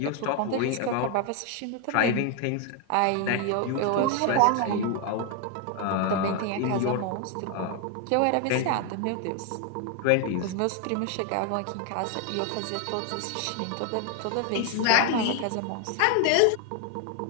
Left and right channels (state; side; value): different; both; correlation 0.01